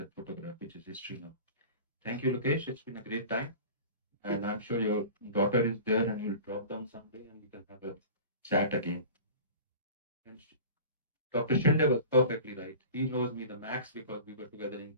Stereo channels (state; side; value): inverted; both; correlation -0.38